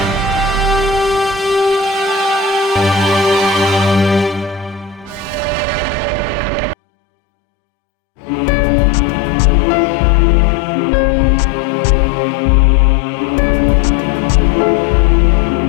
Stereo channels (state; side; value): drops out; right; at 6.8 s